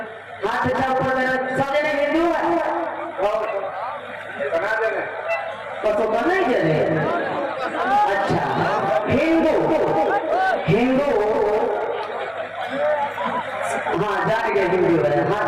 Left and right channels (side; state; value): both; identical; correlation 1.00